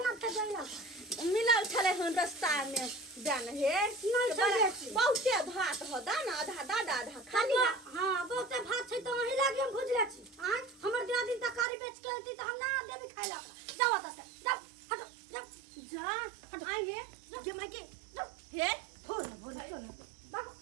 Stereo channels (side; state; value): left; drops out; at 11.7 s